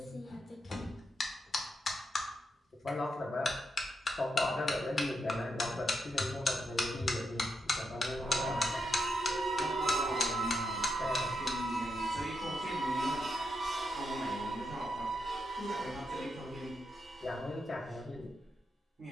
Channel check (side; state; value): both; normal; correlation 0.84